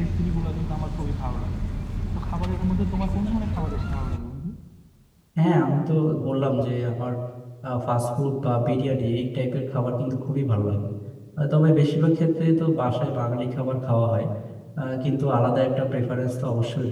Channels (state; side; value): identical; both; correlation 1.00